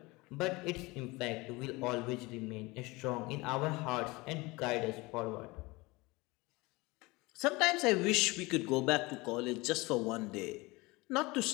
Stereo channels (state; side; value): quieter; right; 23.2 dB